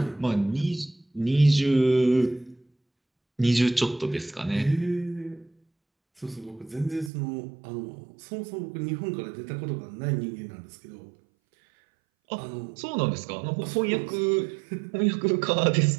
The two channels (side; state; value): left; drops out; at 7.1 s